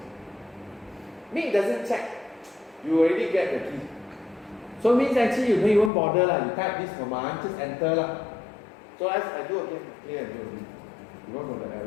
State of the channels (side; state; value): right; drops out; at 5.9 s